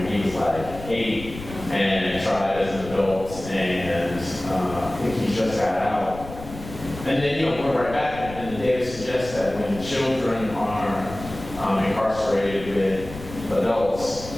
He was like 8 and tried as an adult, and I think he just got out. And then, we're right back, and the data suggests that when children are incarcerated with adults,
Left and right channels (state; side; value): noise; left; rumble, 13 dB below the sound